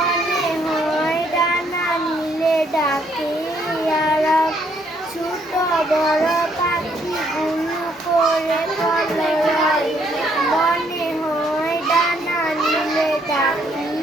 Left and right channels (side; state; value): both; normal; correlation 0.69